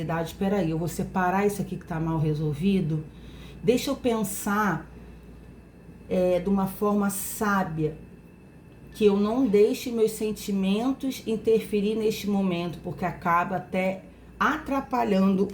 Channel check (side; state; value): both; identical; correlation 1.00